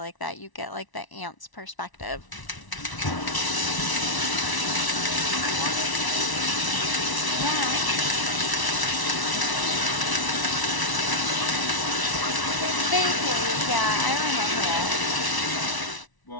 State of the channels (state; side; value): late; right; 1.0 ms